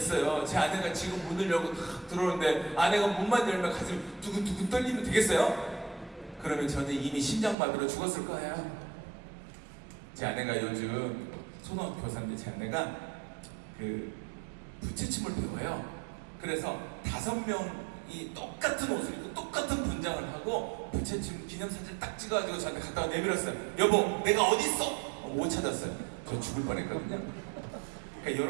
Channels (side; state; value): left; drops out; at 7.6 s